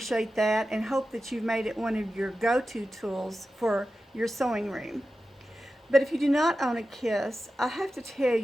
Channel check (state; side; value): normal; both; correlation 0.93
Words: that and hope that you've made it one of your go-to tools for your sewing room. But if you do not own a KISS, I have to tell